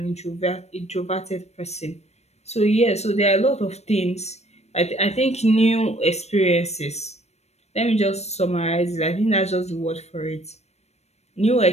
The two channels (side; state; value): right; late; 0.31 ms